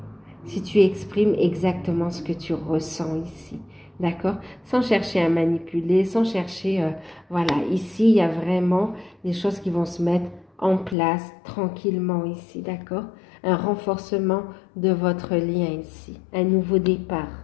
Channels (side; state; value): right; drops out; at 11.0 s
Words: Si tu exprimes exactement ce que tu ressens ici. D'accord? Sans chercher à manipuler, sans chercher... voilà, ici, il y a vraiment des choses qui vont se mettre en place tranquillement ici. D'accord? Un renforcement de votre lien ici. Un nouveau départ.